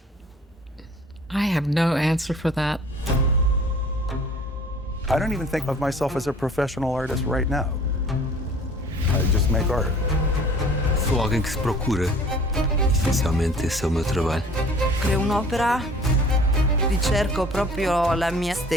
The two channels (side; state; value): both; normal; correlation 0.50